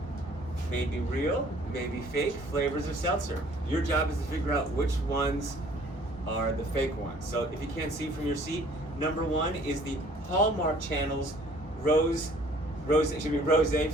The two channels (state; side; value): normal; both; correlation 0.55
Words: maybe real, maybe fake flavors of seltzer. Your job is to figure out which ones are the fake ones. So if you can't see from your seat, number 1 is the Hallmark Channel's rose